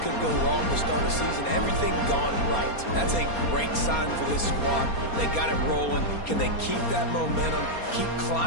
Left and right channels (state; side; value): late; right; 4.3 ms